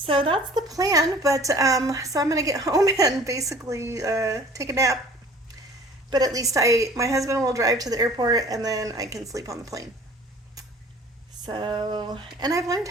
that's the plan, but so I'm gonna get home and basically take a nap. But at least my husband will drive to the airport, and then I can sleep on the plane. So, and I've learned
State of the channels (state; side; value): normal; both; correlation 0.48